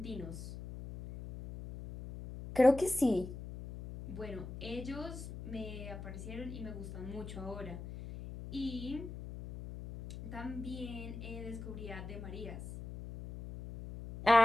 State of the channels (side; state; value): left; noise; hum, 10 dB below the sound